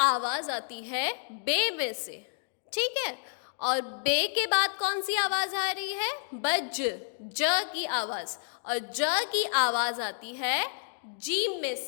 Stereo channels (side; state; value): right; silent; digital silence